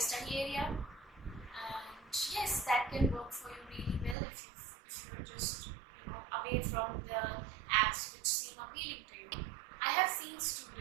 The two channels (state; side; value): drops out; left; at 4.2 s